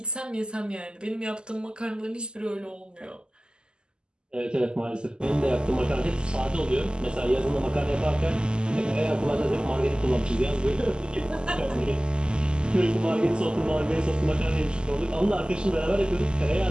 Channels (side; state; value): left; late; 0.047 ms